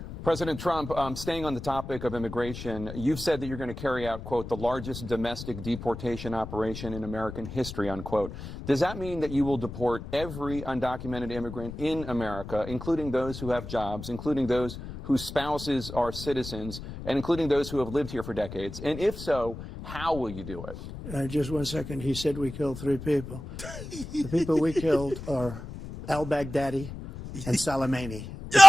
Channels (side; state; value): left; noise; rumble, 10 dB below the sound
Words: President Trump, staying on the topic of immigration, you've said that you're going to carry out, quote, the largest domestic deportation operation in American history, unquote. Does that mean that you will deport every undocumented immigrant in America, including those who have jobs, including those whose spouses are citizens, and including those who have lived here for decades? And if so, how will you do it? Just 1 second. He said we killed three people. The people we killed are al-Baghdadi and Soleimani.